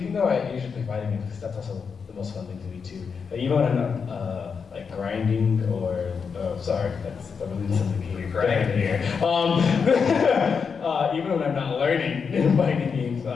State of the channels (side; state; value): right; quieter; 5.9 dB